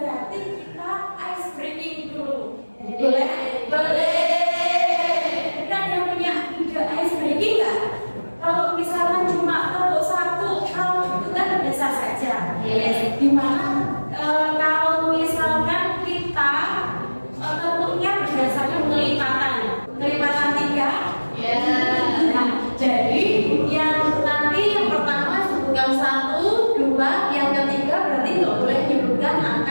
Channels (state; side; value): inverted; both; correlation -1.00